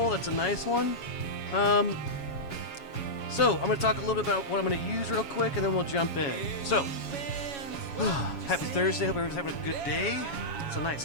that's a nice one. So I'm going to talk a little bit about what I'm going to use real quick, and then we'll jump in. So, happy Thursday. Hope everyone's having a good day. It's a nice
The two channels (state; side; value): late; right; 7.2 ms